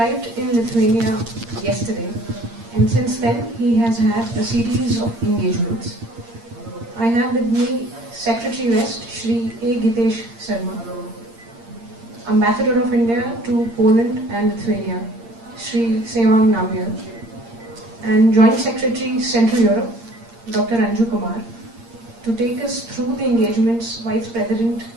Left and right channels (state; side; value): late; left; 8.7 ms